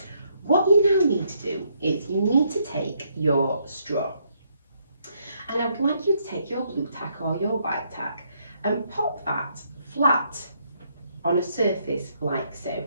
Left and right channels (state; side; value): inverted; both; correlation -0.73